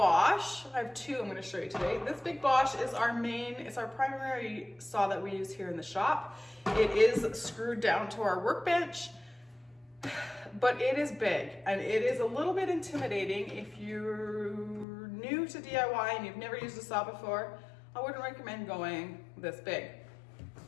I have two I'm going to show you today. This big Bosch is it's our primary saw that we use here in the shop. It is screwed down to our workbench, but it is big and it is a little bit intimidating. If you're new to DIY and you've never used a saw before, I wouldn't recommend going this big.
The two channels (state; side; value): drops out; right; at 14.9 s